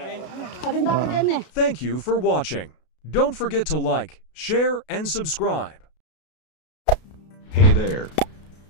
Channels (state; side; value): late; right; 33 ms